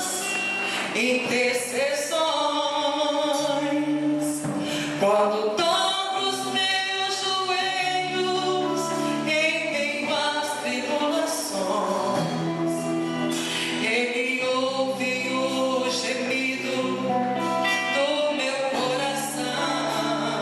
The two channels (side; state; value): both; identical; correlation 1.00